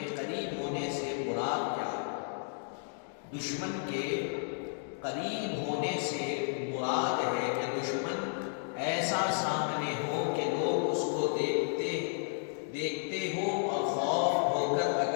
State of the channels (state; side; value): silent; right; 56 dB below the other